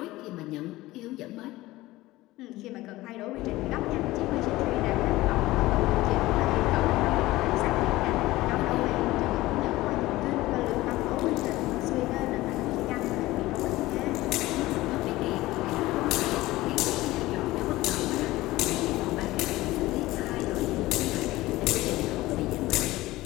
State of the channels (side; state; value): right; quieter; 18.1 dB